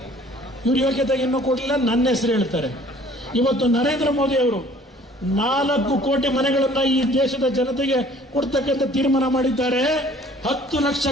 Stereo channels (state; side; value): normal; both; correlation 0.54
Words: ಇವ್ರ ಯೋಗ್ಯತೆಗೆ ಇನ್ನೂ ಕೊಡಲಿಲ್ಲ. ನನ್ನ ಹೆಸರು ಹೇಳ್ತಾರೆ. ಇವತ್ತು ನರೇಂದ್ರ ಮೋದಿ ಅವರು 4 ಕೋಟಿ ಮನೆಗಳನ್ನ ಈ ದೇಶದ ಜನತೆಗೆ ಕೊಡ್ತಕ್ಕಂಥ ತೀರ್ಮಾನ ಮಾಡಿದ್ದಾರೆ. 10 ಲಕ್ಷ